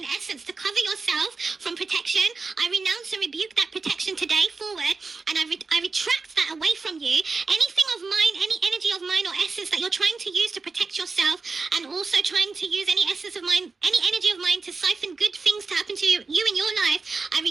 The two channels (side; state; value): left; quieter; 4.2 dB